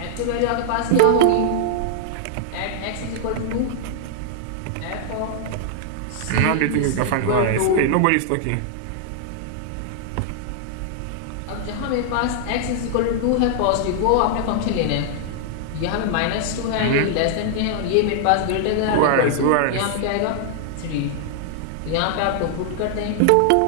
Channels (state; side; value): different; both; correlation -0.01